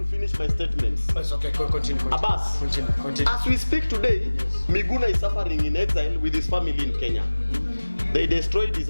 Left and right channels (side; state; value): both; inverted; correlation -1.00